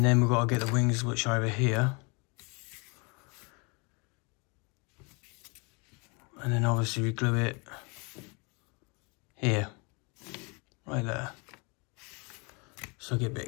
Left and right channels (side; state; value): right; quieter; 30.6 dB